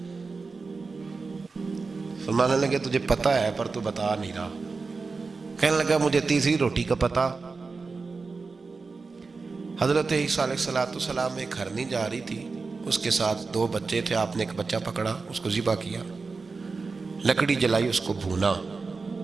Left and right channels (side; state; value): left; quieter; 4.3 dB